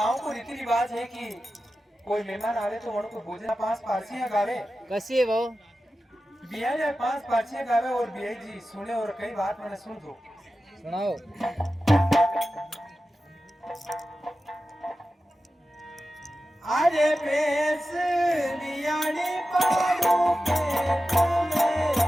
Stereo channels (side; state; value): both; normal; correlation 0.93